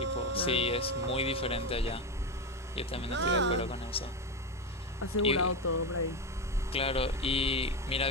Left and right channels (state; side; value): normal; both; correlation 0.14